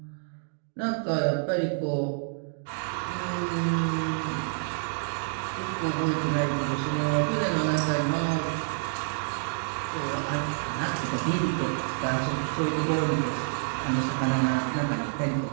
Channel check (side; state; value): left; silent; digital silence